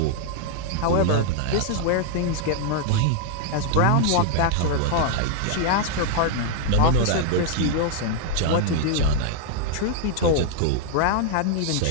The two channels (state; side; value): different; both; correlation 0.00